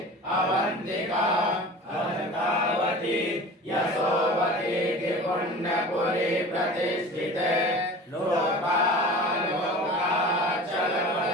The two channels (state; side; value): normal; both; correlation 0.38